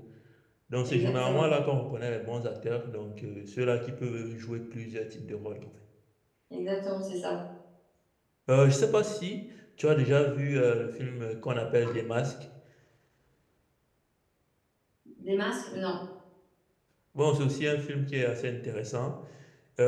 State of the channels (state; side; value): identical; both; correlation 1.00